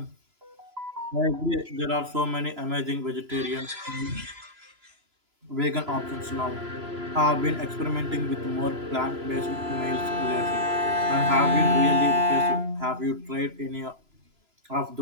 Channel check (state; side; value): late; left; 3.0 ms